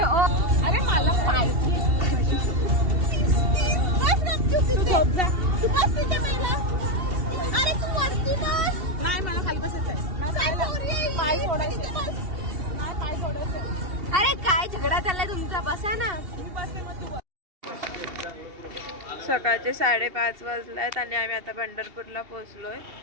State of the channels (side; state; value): left; late; 2.7 ms